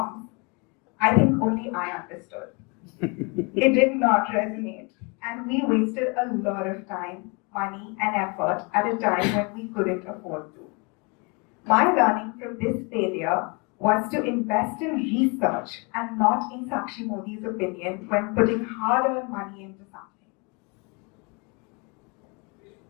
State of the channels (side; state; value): right; quieter; 31.1 dB